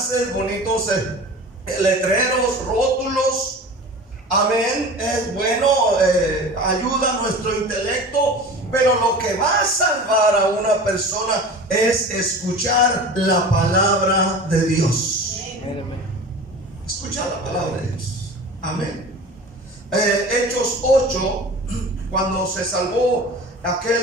bonitos letreros, rótulos. Amén. Es bueno, ayuda a nuestro intelecto. Pero lo que va a salvar a una persona es escuchar la palabra de Dios. Escuchar la palabra de Dios. Amén. Hechos 8, cuando se salvó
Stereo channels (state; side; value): normal; both; correlation 0.37